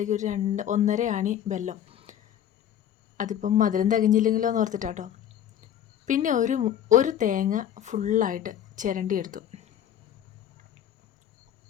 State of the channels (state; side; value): quieter; right; 10.2 dB